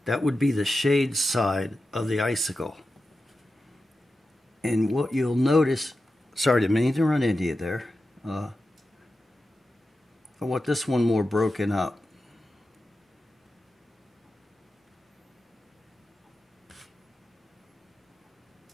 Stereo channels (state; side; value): normal; both; correlation 0.91